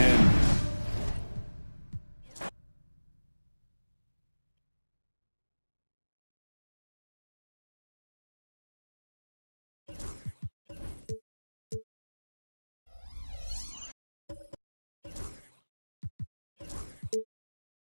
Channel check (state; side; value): inverted; both; correlation -1.00